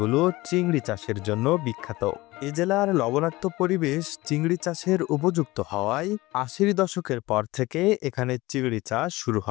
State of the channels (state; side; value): quieter; right; 19.9 dB